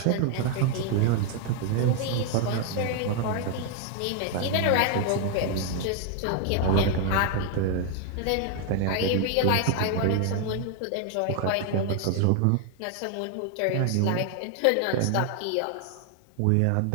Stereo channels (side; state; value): both; different; correlation 0.00